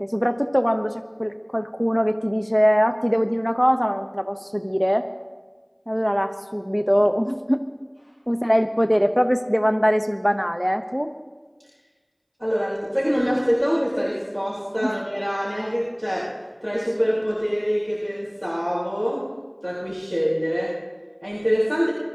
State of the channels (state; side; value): identical; both; correlation 1.00